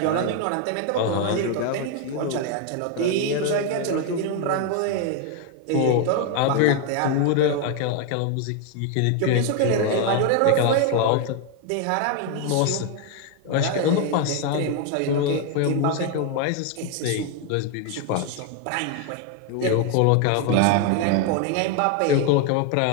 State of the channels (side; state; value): both; different; correlation 0.01